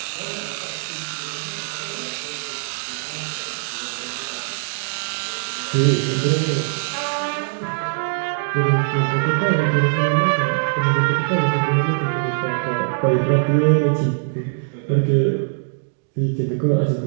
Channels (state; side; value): silent; left; digital silence